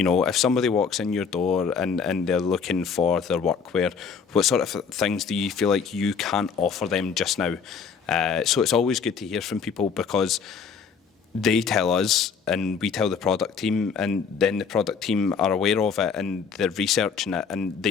somebody walks in your door and they're looking for their workwear, what sort of things do you feel like you can't offer them just now? So it's always good to hear from people, because they tell us and we tell the product team, and then the product team are aware of it and they're researching it, and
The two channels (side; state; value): right; quieter; 6.1 dB